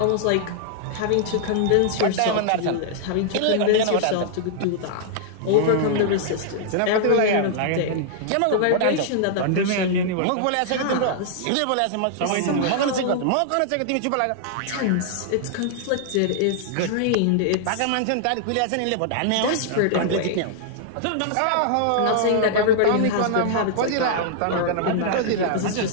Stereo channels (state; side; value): different; both; correlation -0.01